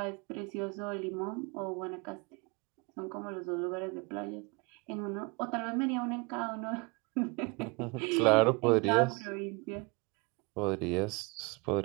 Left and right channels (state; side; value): quieter; left; 28.1 dB